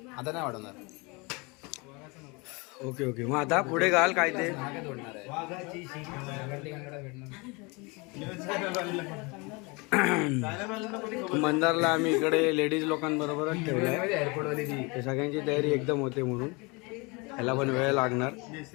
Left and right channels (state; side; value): quieter; right; 27.8 dB